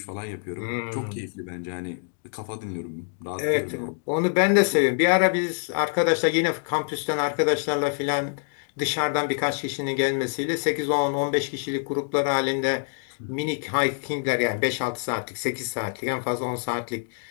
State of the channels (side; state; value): right; silent; 59 dB below the other